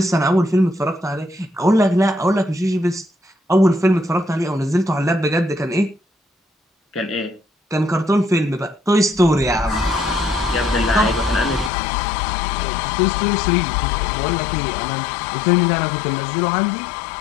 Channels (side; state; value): right; drops out; at 11.7 s